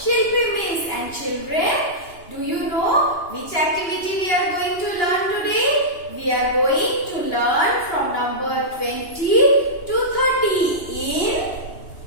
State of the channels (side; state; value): right; late; 2.8 ms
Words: Miss, and children, do you know which activity we are going to learn today? We are going to learn from number 20 to 30 in